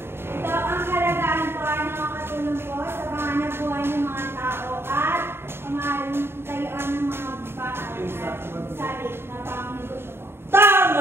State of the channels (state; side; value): late; left; 0.11 ms